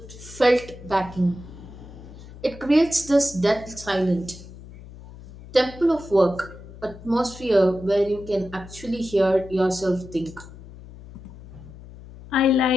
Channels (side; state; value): left; noise; hum, 17 dB below the sound